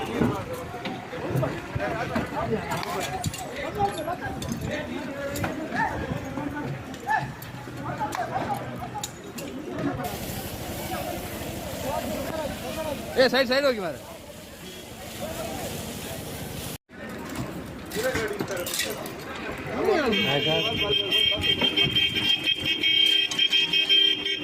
ಸೈಡ್ ಸೈಡ್ ಹೋಗಿ ಮಾರ.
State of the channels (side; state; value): both; identical; correlation 1.00